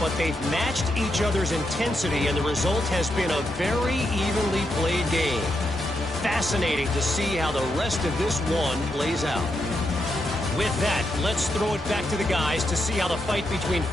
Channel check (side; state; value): both; normal; correlation 0.83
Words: they've matched each other's intensity, and the result has been a very evenly played game. Fascinating to see how the rest of this one plays out. With that, let's throw it back to the guys to see how the fight between